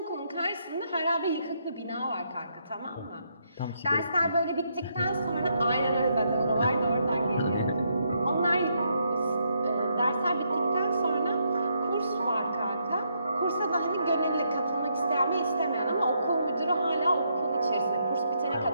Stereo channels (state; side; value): inverted; both; correlation -0.76